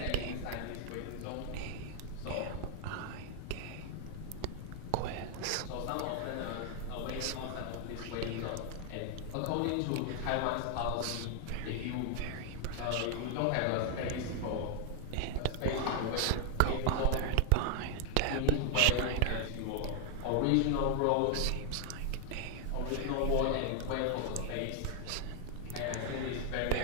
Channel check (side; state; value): both; different; correlation 0.00